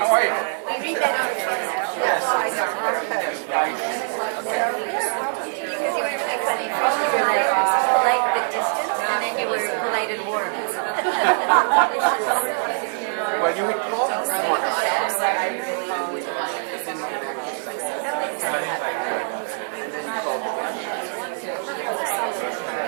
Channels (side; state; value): left; silent; 58 dB below the other